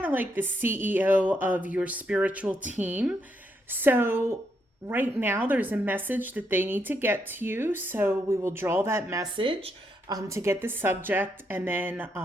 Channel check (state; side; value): normal; both; correlation 0.78